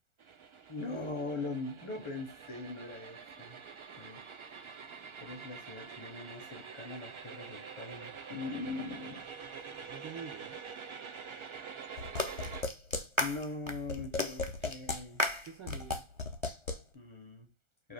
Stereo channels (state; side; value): late; left; 1.4 ms